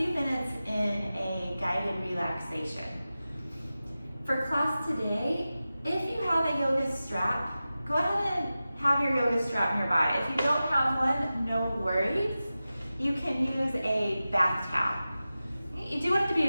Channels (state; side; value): inverted; both; correlation -0.95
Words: minutes in a guided relaxation. For class today, if you have a yoga strap, go ahead and have your yoga strap nearby. If you don't have one, no worries. You can use a bath towel. You do